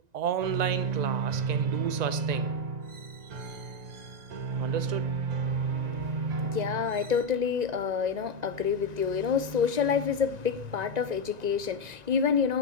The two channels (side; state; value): left; late; 1.9 ms